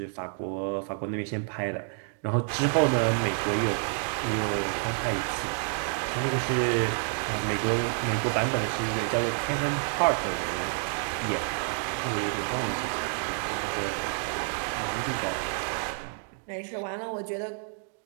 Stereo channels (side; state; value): left; silent; 59 dB below the other